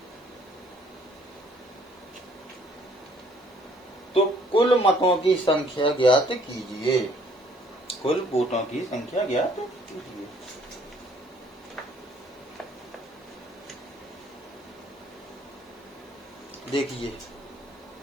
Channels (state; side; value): normal; both; correlation 0.61